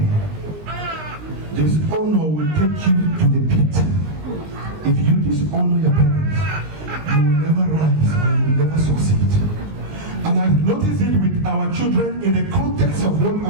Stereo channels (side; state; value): left; late; 19 ms